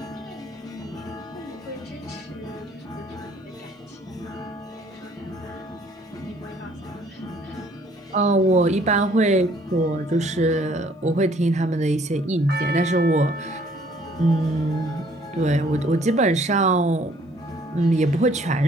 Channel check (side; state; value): both; normal; correlation 0.60